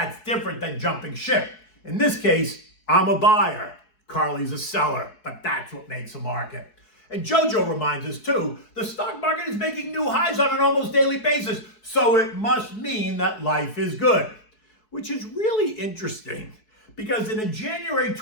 different than jumping ship. In this case, I'm a buyer. Carly's a seller, but that's what makes a market. And Jojo reminds us too, the stock market is making new highs on an almost daily basis, so it must mean that life is good. Which is really interesting, because in a January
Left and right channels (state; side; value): late; right; 4.7 ms